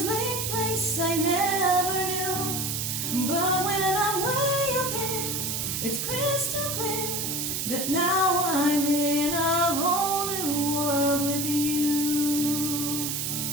place I never knew. But when I'm way up here, it's crystal clear that now I'm in a whole new world with you.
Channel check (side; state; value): right; noise; hiss, 1 dB below the sound